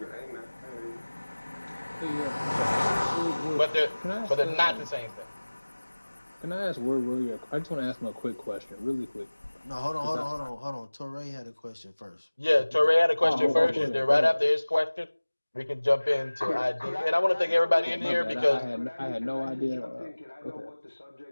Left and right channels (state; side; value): inverted; both; correlation -1.00